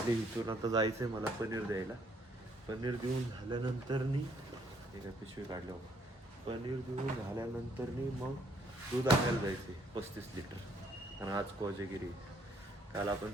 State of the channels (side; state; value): both; normal; correlation 0.67